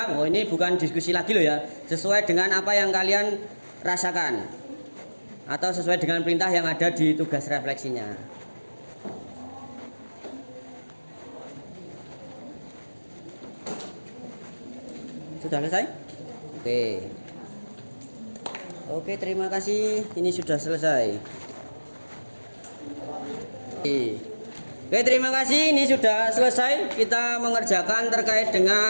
Oh, ini bukan diskusi lagi loh ya. Sesuai dengan apa yang kalian rasakan atau sesuai dengan perintah yang ada di tugas refleksinya. Sudah selesai? Oke, terima kasih. Ini sudah selesai. Oke, terima kasih. Ini sudah selesai. Kita mengerjakan terkait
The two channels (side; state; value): both; inverted; correlation -1.00